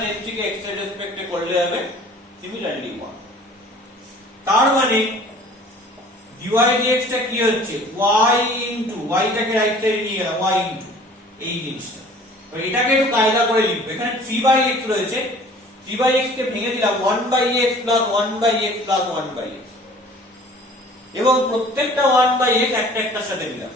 a3 কে x এর রেসপেক্টে করলে হবে সিমিলারলি 1। তার মানে dy dx টা কি হচ্ছে y ইনটু y টাকে রাইট সাইডে নিয়ে গেলাম y ইনটু এই জিনিসটা, তো এটাকে একটু কায়দা করে লিখব। এখানে 3/x রয়েছে, 3/x কে ভেঙে দিলাম 1/x plus 1/x plus 1/x, এবং প্রত্যেকটা 1/x একটা একটার সাথে দিলাম।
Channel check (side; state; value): both; normal; correlation 0.49